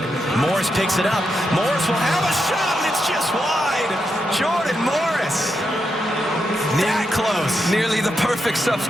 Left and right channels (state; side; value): normal; both; correlation 0.84